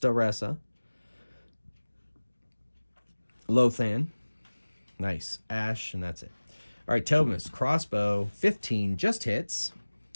Lothan. Nice. Ash, and that's it. All right, Tobamus, crossbow, 15, just hits.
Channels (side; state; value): both; inverted; correlation -1.00